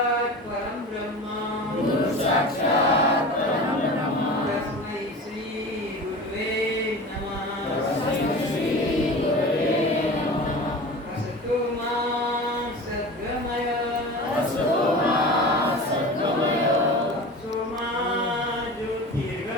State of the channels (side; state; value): both; normal; correlation 0.34